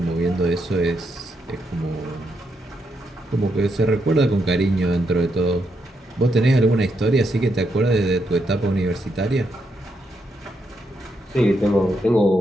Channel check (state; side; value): normal; both; correlation 0.80